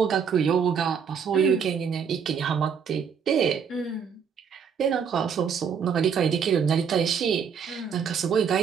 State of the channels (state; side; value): quieter; left; 6.9 dB